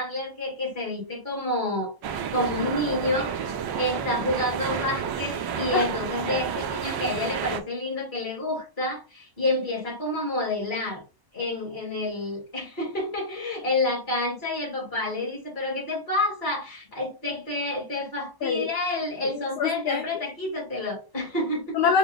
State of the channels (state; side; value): late; left; 1.0 ms